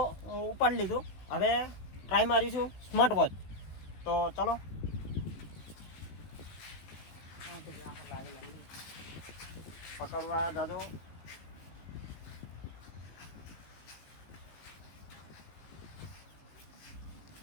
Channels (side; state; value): right; late; 15 ms